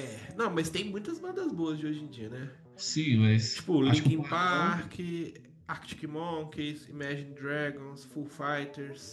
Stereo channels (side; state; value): both; identical; correlation 1.00